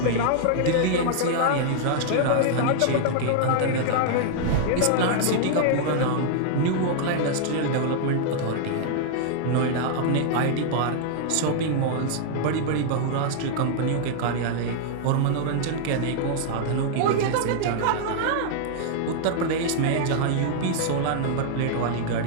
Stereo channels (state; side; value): different; both; correlation -0.01